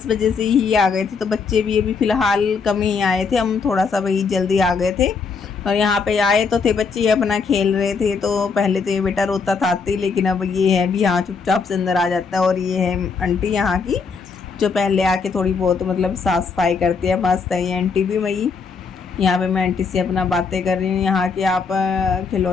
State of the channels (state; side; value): quieter; right; 5.1 dB